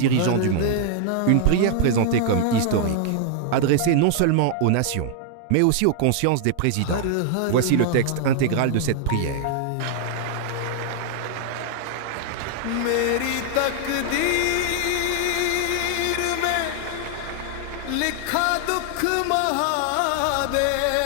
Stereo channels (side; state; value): both; different; correlation 0.00